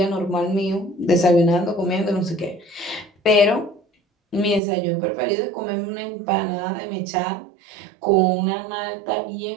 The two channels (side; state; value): left; drops out; at 4.6 s